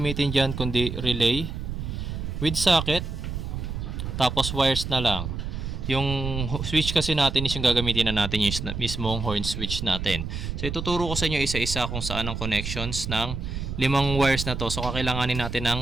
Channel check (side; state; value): right; noise; rumble, 5 dB below the sound